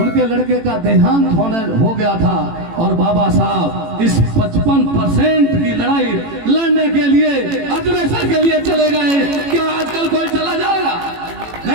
लड़के का देहांत हो गया था और बाबा साहब इस 55% की लड़ाई लड़ने के लिए, अग्रेसर के लिए चले गए। क्या आजकल कोई चला जाएगा?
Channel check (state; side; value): late; left; 18 ms